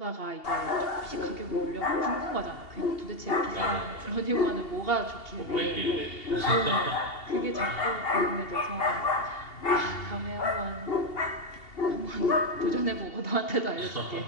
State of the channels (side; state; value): right; late; 2.8 ms